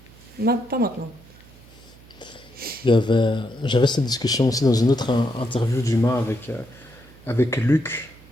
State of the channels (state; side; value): noise; right; hum, 24 dB below the sound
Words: non, pas maintenant. J'avais cette discussion aussi dans une autre interview d'Humain avec Luc.